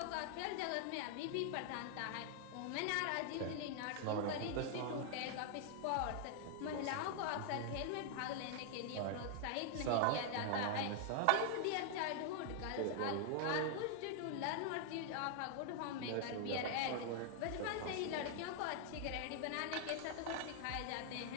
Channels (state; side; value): different; both; correlation 0.00